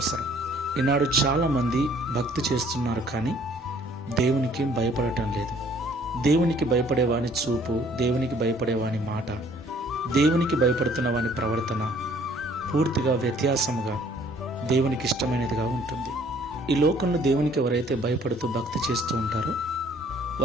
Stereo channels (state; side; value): normal; both; correlation 0.58